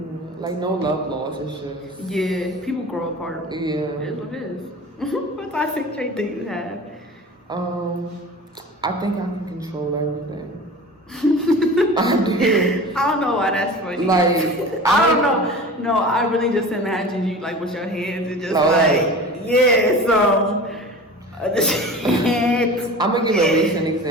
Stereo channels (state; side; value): normal; both; correlation 0.36